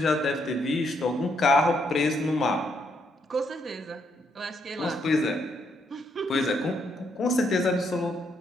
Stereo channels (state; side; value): normal; both; correlation 0.75